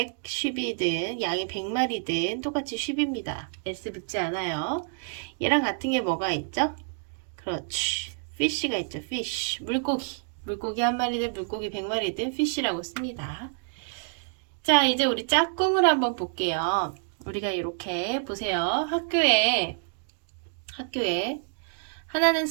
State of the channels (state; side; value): silent; left; 59 dB below the other